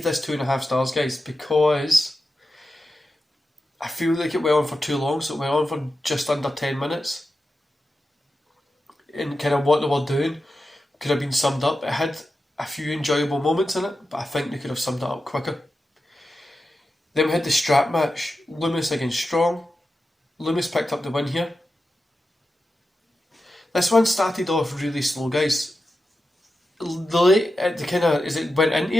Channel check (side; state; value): both; normal; correlation 0.91